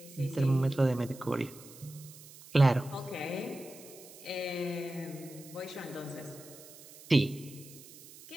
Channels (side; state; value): right; noise; hiss, 19 dB below the sound